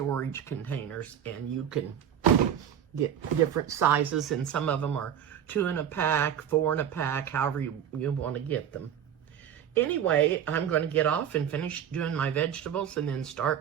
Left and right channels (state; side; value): quieter; left; 9.4 dB